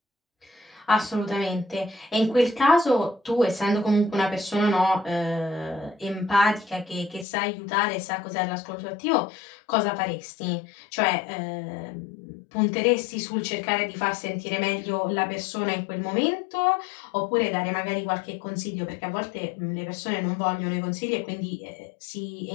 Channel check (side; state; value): right; drops out; at 7.2 s